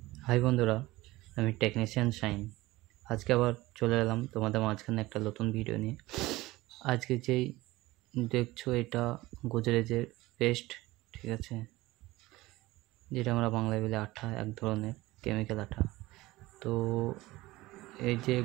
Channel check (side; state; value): left; quieter; 18.9 dB